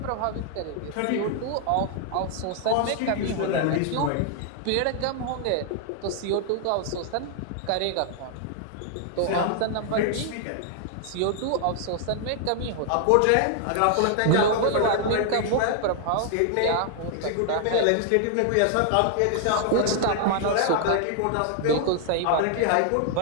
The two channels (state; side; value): different; both; correlation 0.00